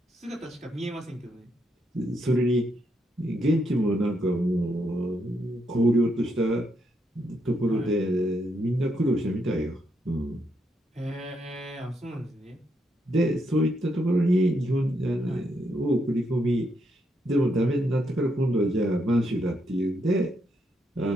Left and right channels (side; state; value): both; normal; correlation 0.78